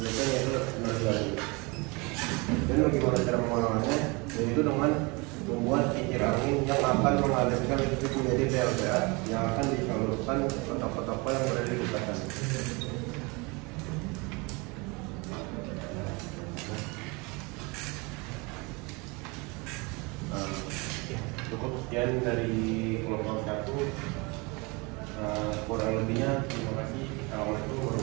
yaitu energi air. Dan bagaimana cara mengolahnya? Yaitu dengan membuat kincir angin yang akan mengalirkan listrik menjadi PLTA yang akan disalurkan ke kota-kota yang berada di dekatan. Cukup sekian dari kelompok 1. Kurang lebihnya terima kasih. Assalamualaikum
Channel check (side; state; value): left; quieter; 27.7 dB